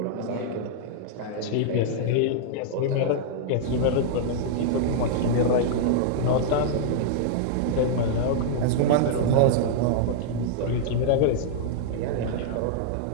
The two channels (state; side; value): different; both; correlation -0.01